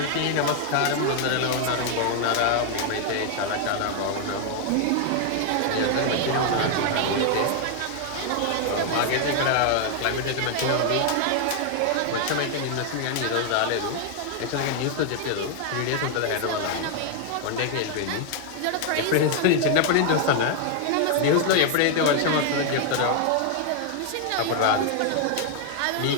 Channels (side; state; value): both; different; correlation 0.00